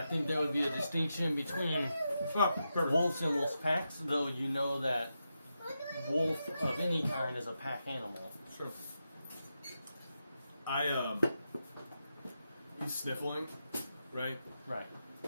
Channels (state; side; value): inverted; both; correlation -0.87